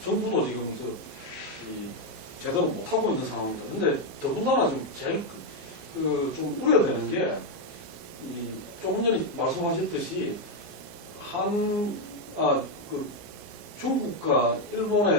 정부도 지금 제대로 못하고 있는 상황입니다. 근데 더군다나 지금 제일 좀 우려되는 게 조금 전에 말씀하셨듯이 중국과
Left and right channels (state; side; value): normal; both; correlation 0.04